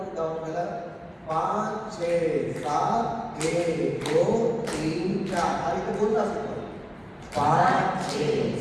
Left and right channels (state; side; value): identical; both; correlation 1.00